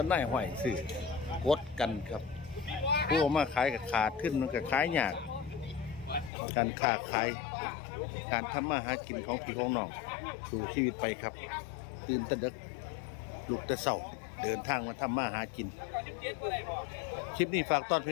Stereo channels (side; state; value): right; drops out; at 6.3 s